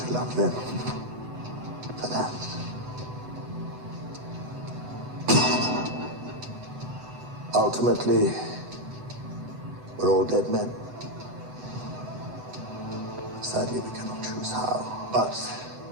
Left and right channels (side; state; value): left; late; 7.9 ms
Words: love them for that. Ultimately, we're all dead men. Sadly, we cannot choose how, but